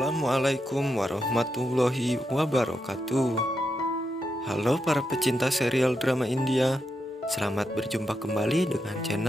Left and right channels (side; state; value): both; normal; correlation 0.84